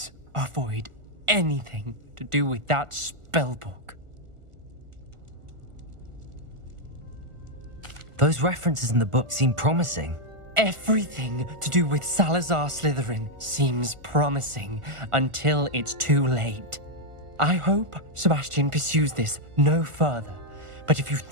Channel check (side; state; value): left; late; 1.4 ms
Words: avoid anything to do with that spellbook. Those references in the book seem promising. Everything to do with Salazar Slytherin seems promising until it's too late. I hope Sebastian pursues this no further, but if you